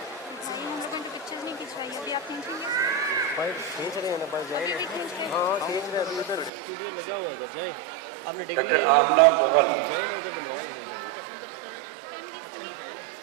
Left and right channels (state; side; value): drops out; left; at 6.5 s